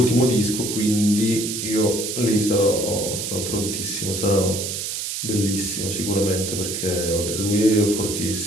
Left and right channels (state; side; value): noise; right; hiss, 4 dB below the sound